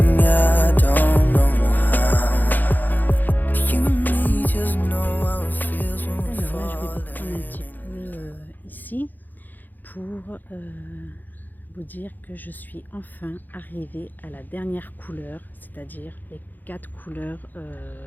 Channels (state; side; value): late; right; 0.086 ms